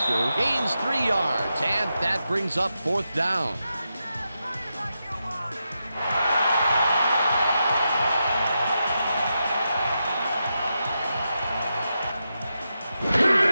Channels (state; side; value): inverted; both; correlation -0.87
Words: gains 3 yards, and that brings up 4th down.